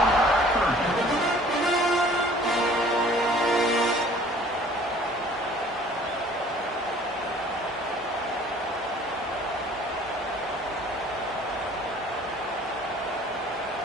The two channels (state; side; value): normal; both; correlation 0.52